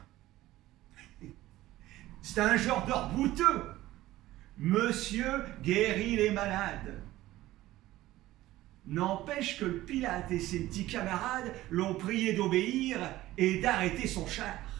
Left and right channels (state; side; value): quieter; left; 16.1 dB